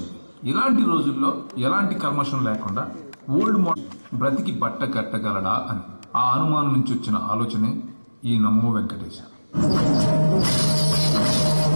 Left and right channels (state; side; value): inverted; both; correlation -1.00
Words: ఇలాంటి రోజుల్లో ఎలాంటి కల్మషం లేకుండా ఓల్డ్ మోడల్ బ్రతికి బట్ట కట్టగలడా అని. ఆ అనుమానం నుంచి వచ్చిన ఆలోచనే ఈ నమో వెంకటేశ.